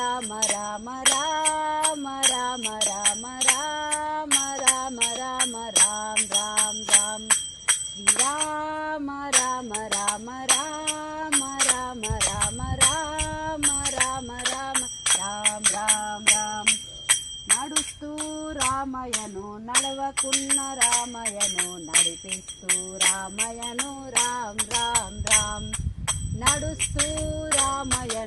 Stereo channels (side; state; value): both; identical; correlation 1.00